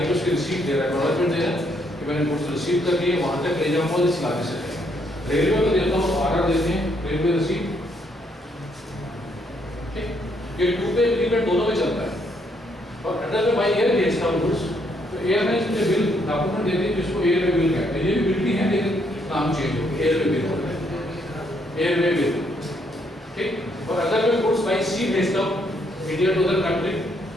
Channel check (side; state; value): both; normal; correlation 0.72